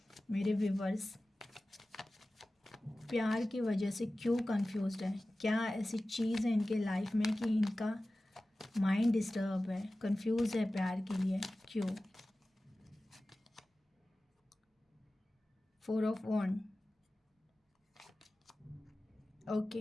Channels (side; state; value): both; normal; correlation 0.96